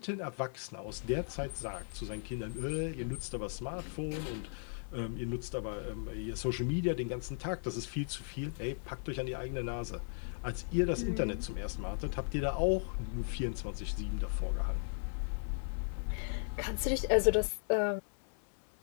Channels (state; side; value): silent; right; 53 dB below the other